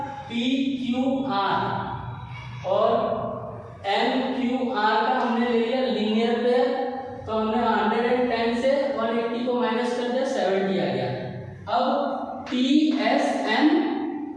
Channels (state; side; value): identical; both; correlation 1.00